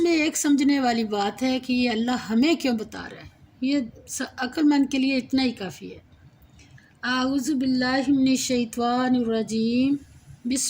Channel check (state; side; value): identical; both; correlation 1.00